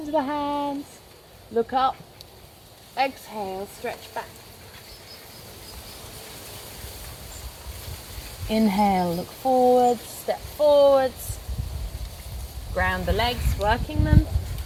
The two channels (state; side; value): identical; both; correlation 1.00